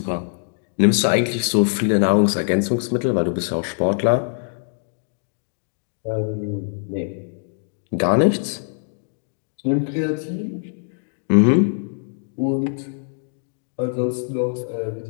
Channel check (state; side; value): silent; right; digital silence